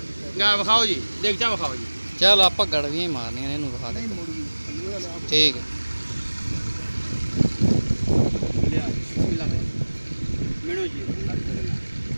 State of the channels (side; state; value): both; inverted; correlation -1.00